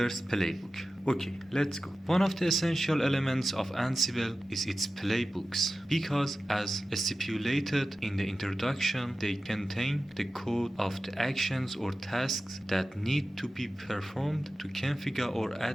playbook. Okay, let's go. One of the essential elements of Ansible is its playbooks because as stipulated in the introduction, they contain the code of the actions or tasks that need to be performed to configure or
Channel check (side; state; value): both; normal; correlation 0.94